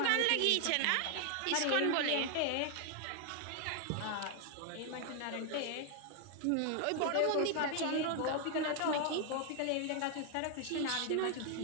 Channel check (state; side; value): different; both; correlation 0.00